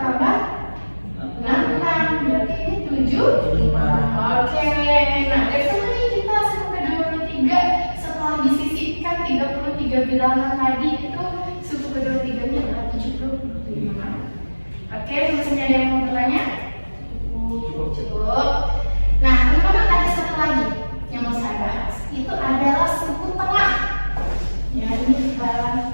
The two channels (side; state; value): both; inverted; correlation -1.00